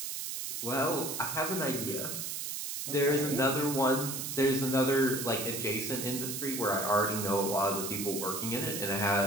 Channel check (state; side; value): noise; right; hiss, 4 dB below the sound